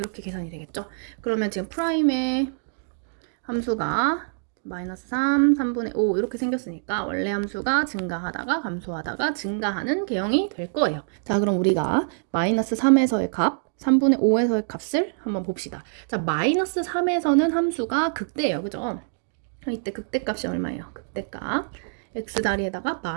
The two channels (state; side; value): silent; left; digital silence